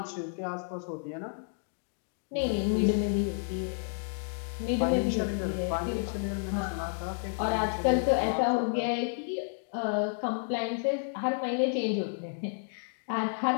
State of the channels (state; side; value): silent; right; digital silence